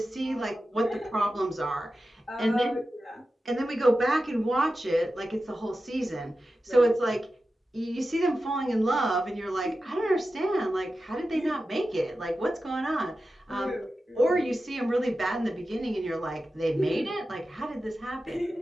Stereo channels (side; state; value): both; normal; correlation 0.93